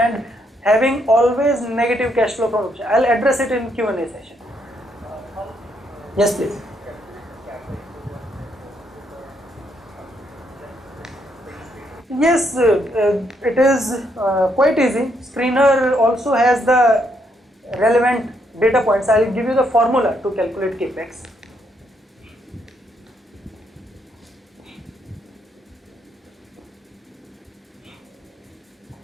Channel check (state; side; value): normal; both; correlation 0.75